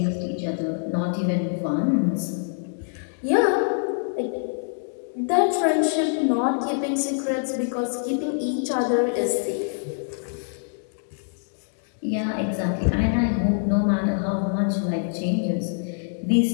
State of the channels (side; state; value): right; silent; digital silence